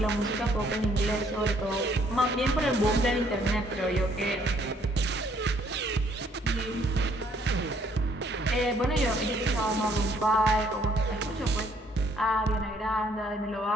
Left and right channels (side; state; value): both; normal; correlation 0.65